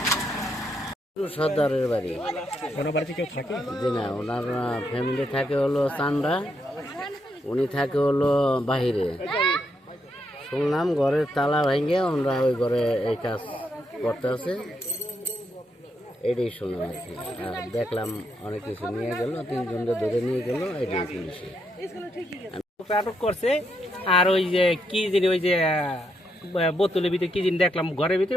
সর্দারের বাড়ি ওনার বাড়িতে কেউ থাকে জি না, ওনার ফ্যামিলি থাকে হলো চান্ডা, উনি থাকে হলো বাহিরে। শুনলাম ঘরের তালা ভেঙে ওনারা ওই ঘরে এই কাজ করতে আছে, এটাই শুনলাম আর কি। আর দেখলাম অনেক কিছু নিয়ে গেল, 3 জনকে ধরে নিয়ে গেল, এটাই পুলিশে আটক করছে। আর ওই যে কি জিনিস ওই যে বোতলের ভিতরে কি জিনিস দেখলাম ঘরের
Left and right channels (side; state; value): both; normal; correlation 0.79